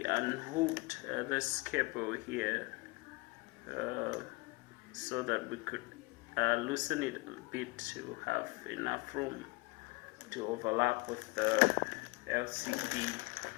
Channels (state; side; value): quieter; right; 25.4 dB